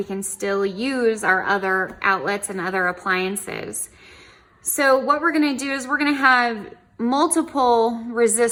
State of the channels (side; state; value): both; identical; correlation 1.00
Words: can still use our other outlets and other appliances. So what we're going to do is we're going to have multiple